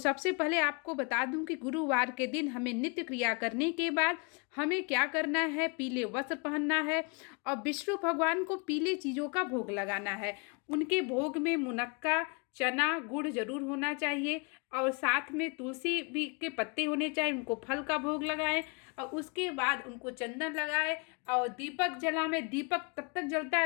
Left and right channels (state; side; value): quieter; right; 33.1 dB